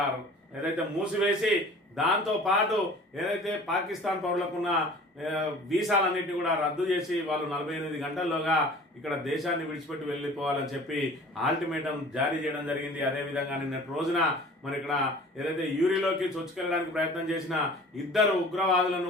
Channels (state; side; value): normal; both; correlation 0.45